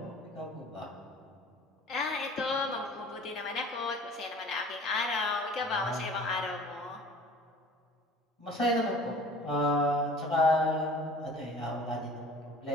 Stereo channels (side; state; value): both; normal; correlation 0.46